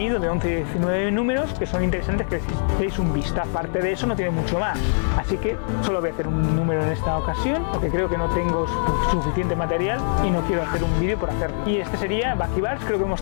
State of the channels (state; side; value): silent; right; digital silence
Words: de 11 y 19 números, que son interesantes, que deis un vistazo. Aparte de eso no tiene mucho más, así que solo voy a hacer un número en esta ocasión porque creo que no tengo suficiente material y no quiero hacer un un vídeo por hacerlo. Y este sería Bucky Barnes. Creo que